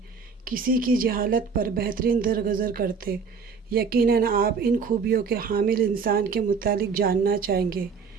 کسی کی جہالت پر بہترین درگزر کرتے۔ یقیناً آپ ان خوبیوں کے حامل انسان کے متعلق جاننا چاہیں گے۔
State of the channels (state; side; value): quieter; left; 5.5 dB